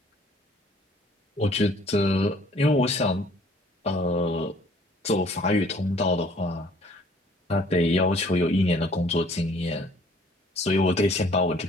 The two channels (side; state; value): both; normal; correlation 0.57